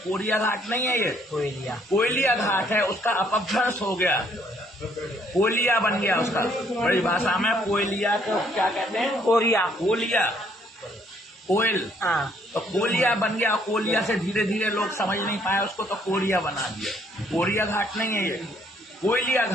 कोरिया घाट नहीं है, ये कोयलिया घाट है। उसका अपभ्रंश हो गया, कोयलिया बन गया उसका। बड़ी भाषा में कोयलिया को क्या कहते हैं? कोरिया, कोयलिया, कोयल। तो कोयलिया बन गया। कोयलिया से धीरे धीरे लोग समझ नहीं पाए उसको, तो कोरिया बना दिया। कोरिया घाट नहीं है, ये कोयलिया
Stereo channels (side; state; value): both; normal; correlation 0.66